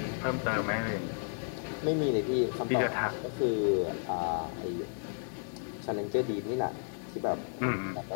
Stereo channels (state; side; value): silent; right; digital silence